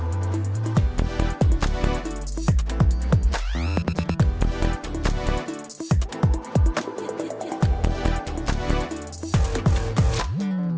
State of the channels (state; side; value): identical; both; correlation 1.00